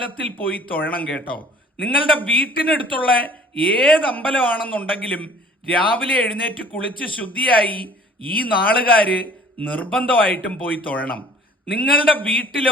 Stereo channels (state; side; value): normal; both; correlation 0.51